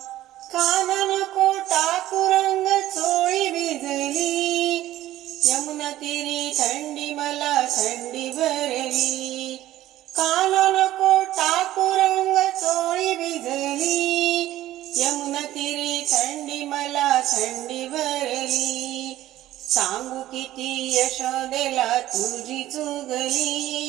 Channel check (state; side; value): quieter; left; 14.4 dB